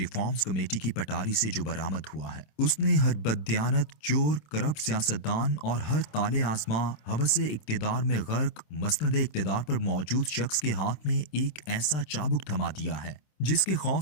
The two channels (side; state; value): right; late; 27 ms